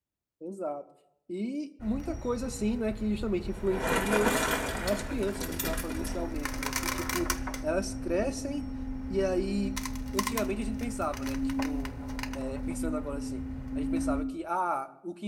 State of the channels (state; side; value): identical; both; correlation 1.00